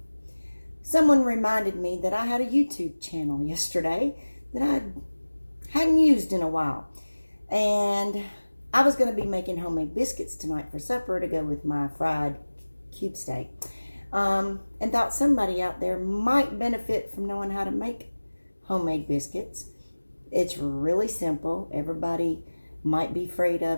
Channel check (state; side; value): inverted; both; correlation -1.00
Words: Someone reminded me that I had a YouTube channel yesterday that I hadn't used in a while. And I was going to be making homemade biscuits tonight for supper to go with my fried cube steak. And thought somebody out there might benefit from knowing how to make homemade biscuits. It's really simple. Everybody might be afraid